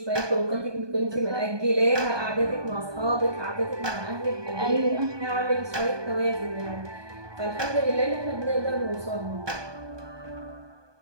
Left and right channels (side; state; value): left; late; 1.2 ms